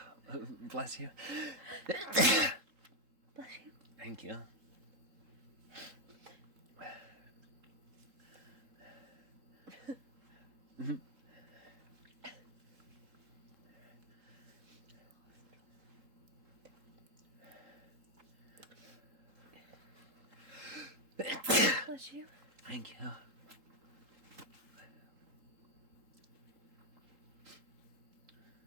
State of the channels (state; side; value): late; left; 3.7 ms